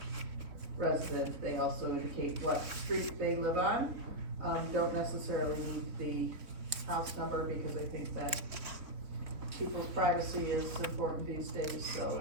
resident, they also indicate what street they live on. Don't necessarily need the house number, because I think that people's privacy is important these days, so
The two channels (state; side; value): late; left; 3.9 ms